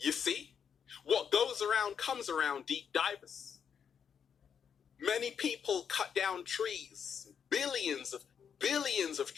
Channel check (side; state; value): right; quieter; 7.4 dB